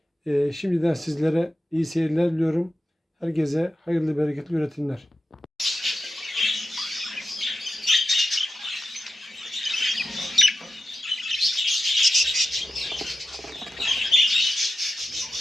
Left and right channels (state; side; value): normal; both; correlation 0.90